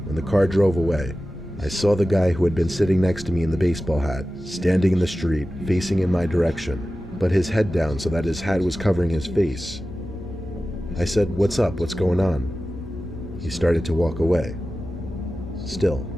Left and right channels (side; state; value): both; normal; correlation 0.95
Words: When the car drove away, I saw the guy who had been sitting next to me in the baseball hat, standing in the street, facing in my direction, but his head down so that his hat was covering his face. I said, "What's up? What's going on?" He started to walk away. Still,